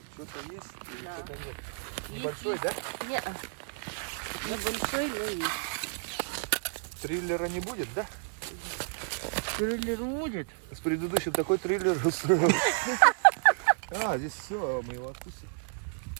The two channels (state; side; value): silent; left; digital silence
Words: Что-то есть или Да. что-то нет? Есть, Небольшой, да? Не, небольшой, но есть. Триллера не будет, да? Триллер будет? С предыдущим такой триллер устроил. А, здесь все, мы его отпустим.